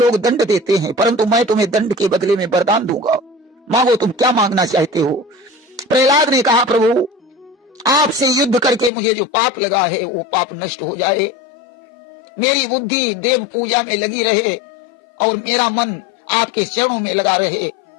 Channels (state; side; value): drops out; right; at 8.9 s